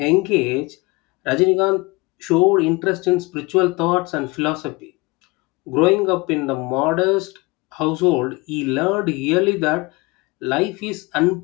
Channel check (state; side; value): quieter; right; 24.8 dB